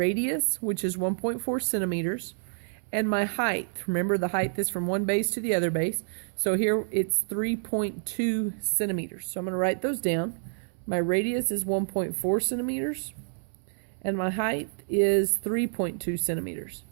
which is 1.4 centimeters, and my height. Remember, the height is from one base to the other base. So here it's 3.2 centimeters. So I'm going to write those down. My radius is 1.4 centimeters, and my height is 3.2 centimeters.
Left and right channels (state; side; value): silent; left; 59 dB below the other